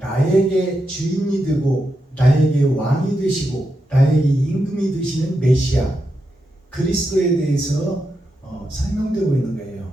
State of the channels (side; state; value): both; normal; correlation 0.86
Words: 나에게 주인이 되고 나에게 왕이 되시고 나에게 임금이 되시는 메시아 그리스도에 대해서 설명되고 있는